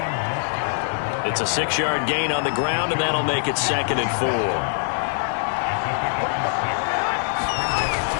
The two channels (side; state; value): right; silent; 61 dB below the other